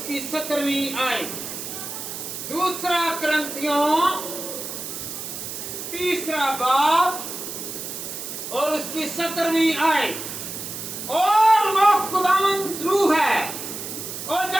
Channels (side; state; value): right; noise; hiss, 7 dB below the sound